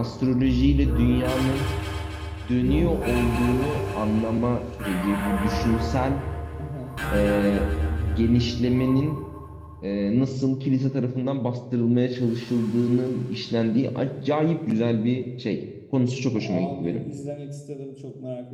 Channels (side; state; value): both; identical; correlation 1.00